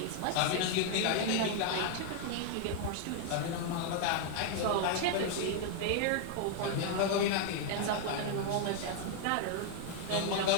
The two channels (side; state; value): both; different; correlation 0.00